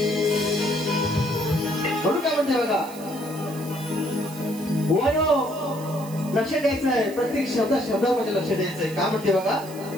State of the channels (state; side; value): noise; right; hiss, 18 dB below the sound